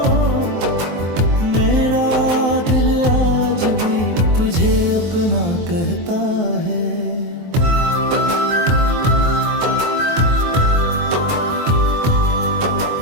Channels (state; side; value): late; left; 23 ms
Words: मेरा दिल आज भी तुझे अपना कहता है।